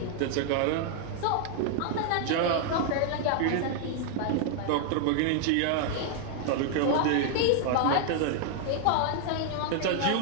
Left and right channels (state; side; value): different; both; correlation 0.00